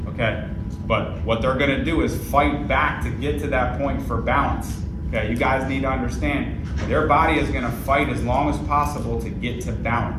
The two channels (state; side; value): identical; both; correlation 1.00